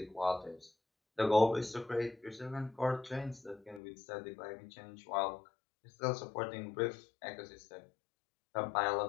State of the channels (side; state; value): right; drops out; at 3.8 s